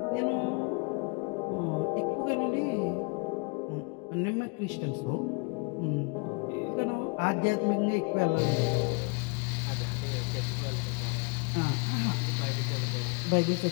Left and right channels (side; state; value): right; quieter; 32.2 dB